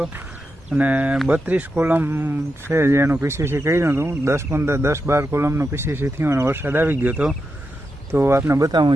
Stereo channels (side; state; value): both; normal; correlation 0.87